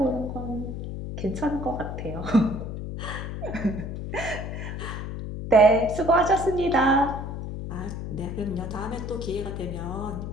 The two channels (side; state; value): left; noise; hum, 6 dB below the sound